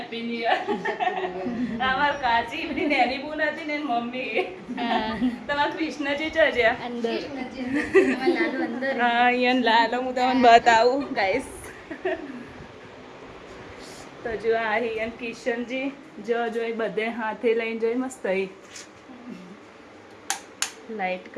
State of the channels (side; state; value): both; identical; correlation 1.00